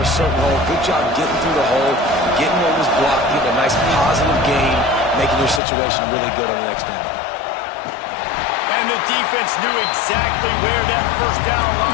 certain hole. Good job getting through the hole, getting what was blocked, getting a nice positive gain, making your situation really good on the next down. And the defense knew exactly where that first down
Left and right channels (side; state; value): right; drops out; at 5.6 s